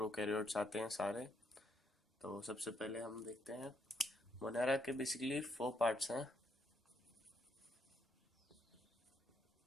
आते हैं सारे। तो सबसे पहले हम देखते हैं मोनेरा के बेसिकली 4 पार्ट्स हैं।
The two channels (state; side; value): normal; both; correlation 0.75